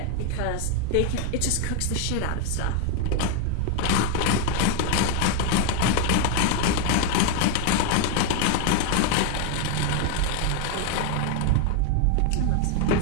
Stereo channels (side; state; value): both; different; correlation 0.01